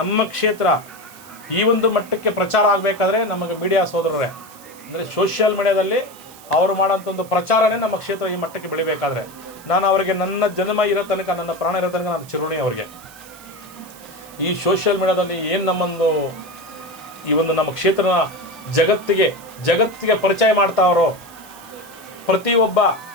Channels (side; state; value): right; noise; hiss, 21 dB below the sound